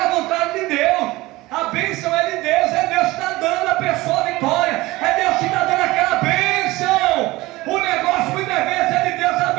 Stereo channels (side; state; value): left; quieter; 19.8 dB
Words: vontade de Deus. A bênção é de Deus. É Deus que está dando a pessoa a vitória. É Deus que está dando aquela bênção. O negócio muitas vezes é de Deus. A